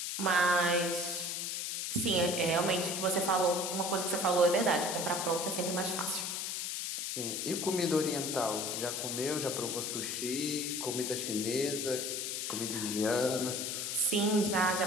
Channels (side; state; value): left; noise; hiss, 2 dB below the sound